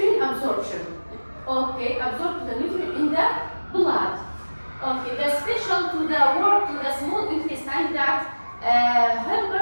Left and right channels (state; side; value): inverted; both; correlation -1.00